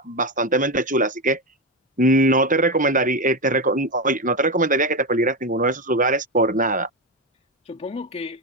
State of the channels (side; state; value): both; normal; correlation 0.13